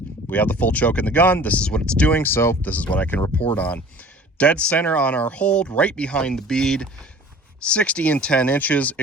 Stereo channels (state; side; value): normal; both; correlation 0.45